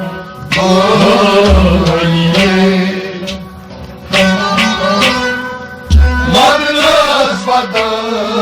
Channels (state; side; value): identical; both; correlation 1.00